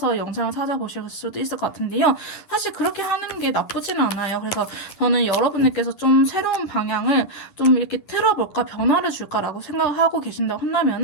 영상을 찾아보실 수도 있을 것 같은데요. 사실 그렇게 하는 게 나쁘지는 않아요. 그래서 저는 여러분들께서 좀 새로운 방향을 좀 이렇게 틀어볼까 변화를 줄까라고 생각을 하고 계신다고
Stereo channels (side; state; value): right; late; 10 ms